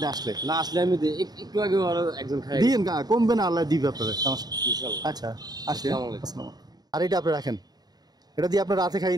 আসলে। না আসলে আমি একটু আগে একজন খাই দিয়েন, কমবে না, আল্লাহ দিবে আপনাদের, সমস্যা। ইনশাআল্লাহ। আচ্ছা আসি। আসসালামু আলাইকুম। আসসালাম। আর এটা আপনি রাখেন, এটা দিয়ে আপনার রাতে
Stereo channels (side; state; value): left; late; 0.19 ms